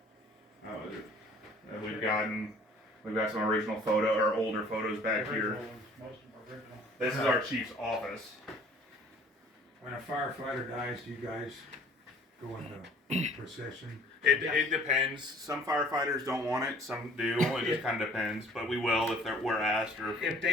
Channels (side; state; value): both; normal; correlation 0.53